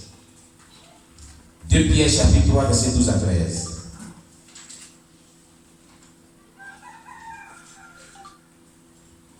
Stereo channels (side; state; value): both; identical; correlation 1.00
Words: 2 Pierre chapitre 3, verset 12 à 13.